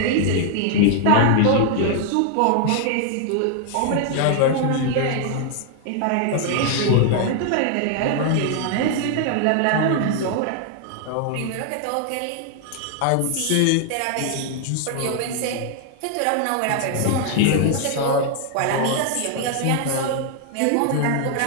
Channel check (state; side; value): different; both; correlation 0.00